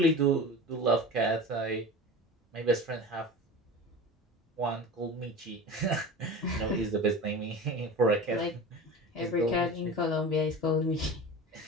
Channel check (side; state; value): both; normal; correlation 0.33